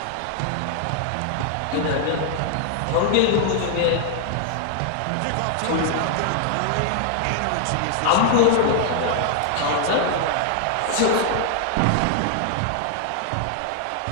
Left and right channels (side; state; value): both; different; correlation 0.00